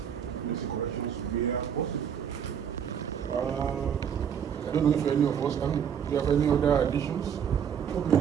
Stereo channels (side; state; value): left; quieter; 8.2 dB